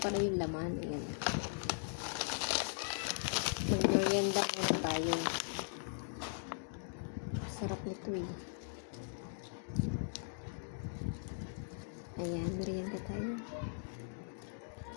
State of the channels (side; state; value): right; silent; digital silence